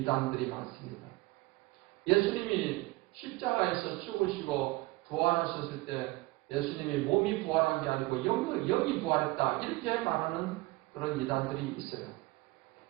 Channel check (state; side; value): quieter; left; 21.1 dB